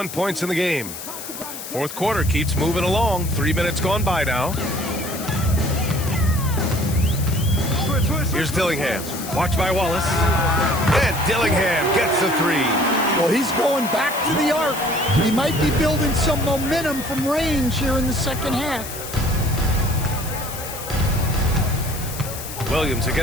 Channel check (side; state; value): left; noise; hiss, 10 dB below the sound